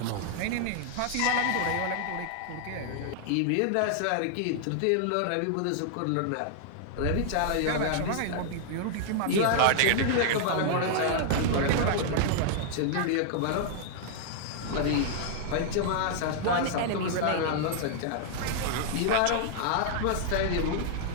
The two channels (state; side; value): different; both; correlation -0.01